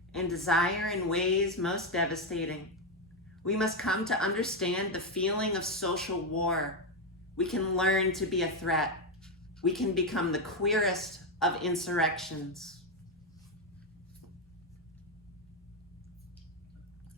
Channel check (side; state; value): both; normal; correlation 0.06